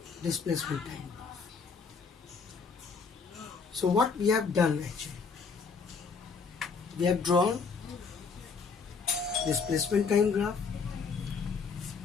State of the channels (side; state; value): right; quieter; 5.2 dB